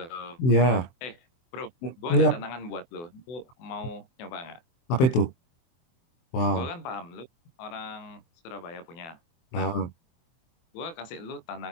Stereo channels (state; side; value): late; right; 23 ms